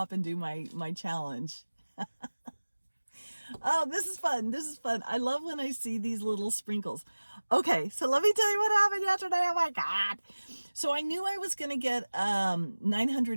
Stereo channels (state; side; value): inverted; both; correlation -1.00